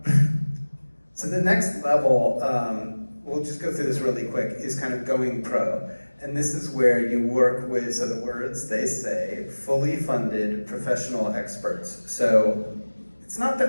So the next level, we'll just go through this really quick, is kind of going pro. And this is where you work with, so the words they say, fully funded professional experts. So it's not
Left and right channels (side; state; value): both; inverted; correlation -1.00